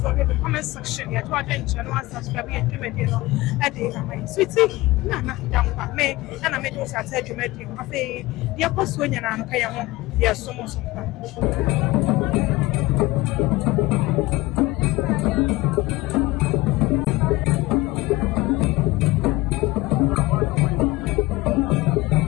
in the comment section. Yeah, to attend channel and subscribe to my video. I did my sweetie. Na down by me and I made those I said you made him. I say the apostle and I'm paying. Yes, so much.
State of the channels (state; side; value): quieter; right; 20.0 dB